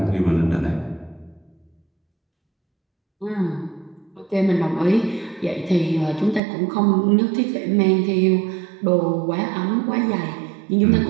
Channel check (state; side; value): drops out; left; at 6.4 s